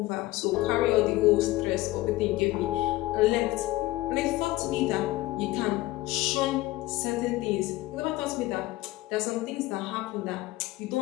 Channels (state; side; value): quieter; right; 18.1 dB